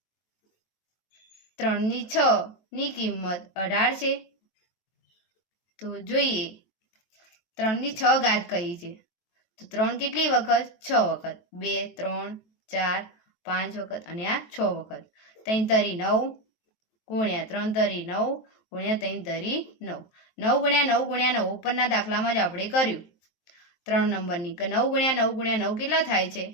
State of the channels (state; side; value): late; right; 23 ms